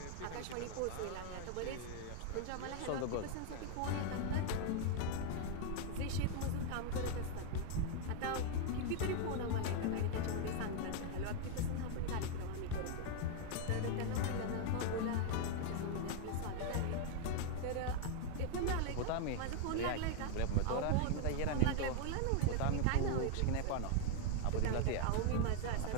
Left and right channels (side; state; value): both; different; correlation 0.00